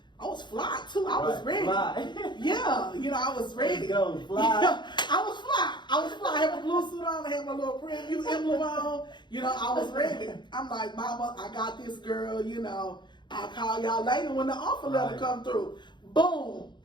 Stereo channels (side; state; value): right; late; 0.22 ms